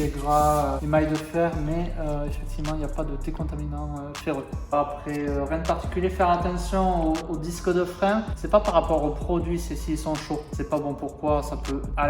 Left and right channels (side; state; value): both; identical; correlation 1.00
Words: est gras, émail de fer, mais effectivement, il n'y a pas de décontaminant ferreux. Après, rien de particulier, faire attention aux disques de frein, c'est pas par rapport aux produits, c'est s'ils sont chauds. C'est pas bon pourquoi, ça peut à